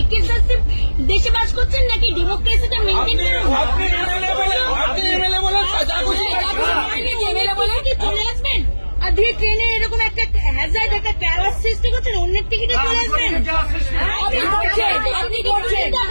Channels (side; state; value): both; inverted; correlation -1.00